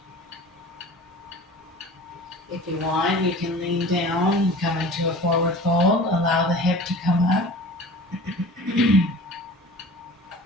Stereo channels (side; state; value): both; normal; correlation 0.40